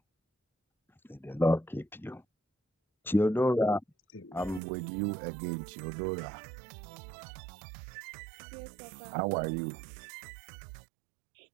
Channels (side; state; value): left; drops out; at 4.6 s